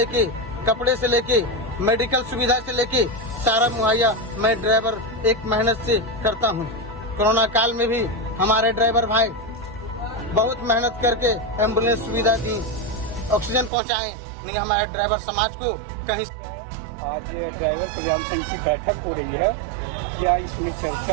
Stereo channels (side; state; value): left; drops out; at 13.7 s